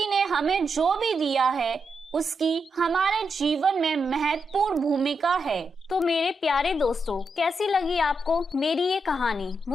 ने हमें जो भी दिया है उसकी हमारे जीवन में महत्वपूर्ण भूमिका है। तो मेरे प्यारे दोस्तों, कैसी लगी आपको मेरी ये कहानी?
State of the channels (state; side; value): normal; both; correlation 0.84